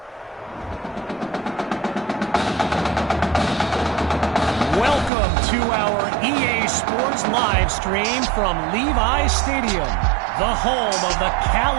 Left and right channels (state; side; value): drops out; left; at 5.1 s